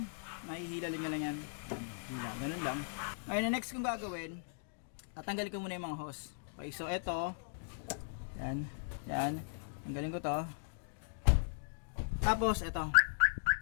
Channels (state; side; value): silent; right; digital silence